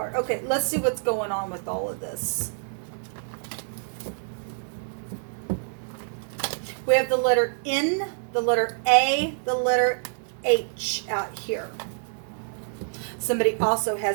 Okay, let's see what's going on with all of this. We have the letter N, the letter A, the letter H out here. Somebody also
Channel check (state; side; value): silent; left; digital silence